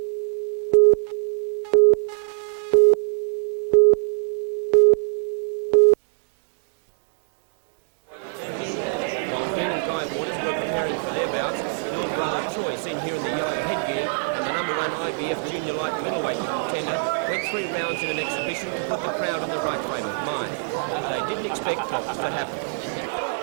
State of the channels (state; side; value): silent; left; digital silence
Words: While Dean and Guy Waters were preparing for their bouts, little brother Troy, seen here in the yellow headgear, and the number 1 IBF junior light middleweight contender, went 3 rounds in an exhibition to put the crowd in the right frame of mind. But they didn't expect what was to happen.